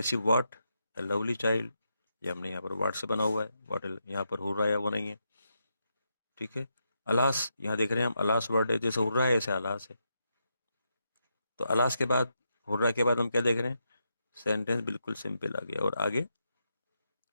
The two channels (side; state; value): both; inverted; correlation -0.83